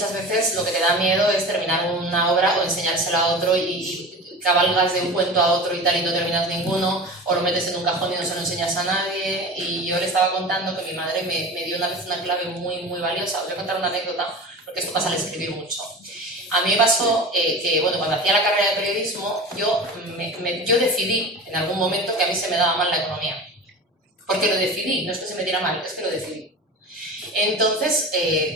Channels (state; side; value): normal; both; correlation 0.33